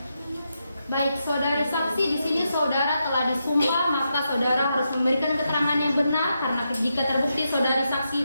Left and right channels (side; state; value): both; inverted; correlation -0.84